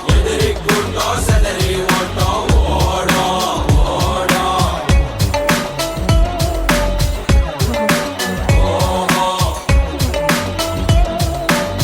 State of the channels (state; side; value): identical; both; correlation 1.00